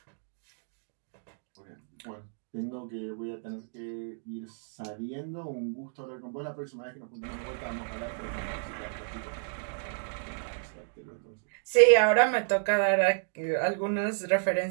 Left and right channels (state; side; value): silent; left; digital silence